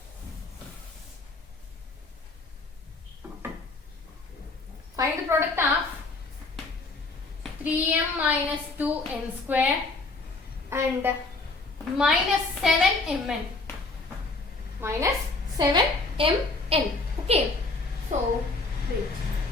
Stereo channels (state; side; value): quieter; right; 3.4 dB